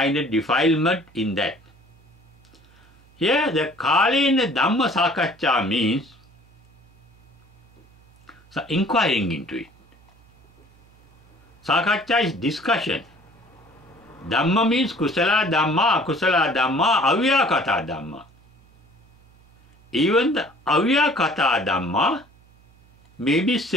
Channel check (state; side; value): noise; right; hum, 29 dB below the sound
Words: of defilement in that. Here, the Kalena Dhamma Sakaccha means inquiring into it. Sakaccha is discussion. Dhamma means kusala dhamma, akusala dhamma, avyakata dhamma. Even the avyakata dhamma may be